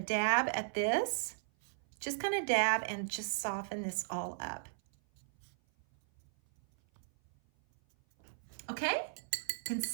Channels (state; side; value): silent; left; 53 dB below the other